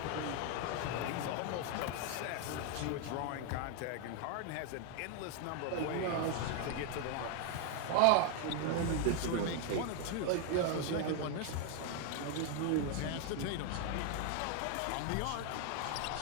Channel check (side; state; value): both; different; correlation 0.00